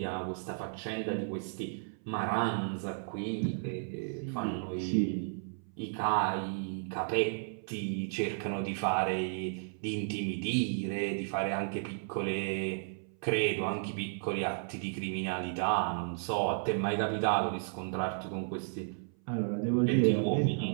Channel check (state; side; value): silent; left; 55 dB below the other